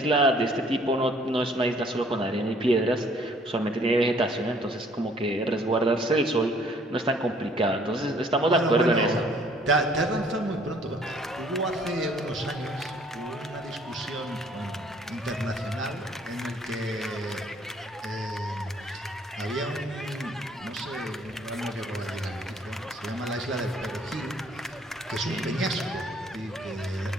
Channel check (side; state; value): both; normal; correlation 0.59